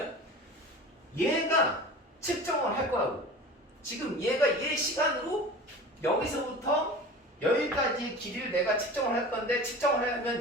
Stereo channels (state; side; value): normal; both; correlation 0.37